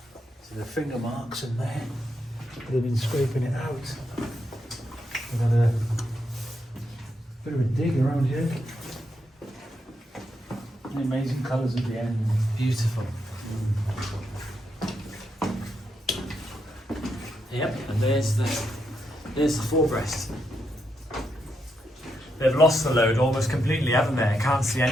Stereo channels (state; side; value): normal; both; correlation 0.81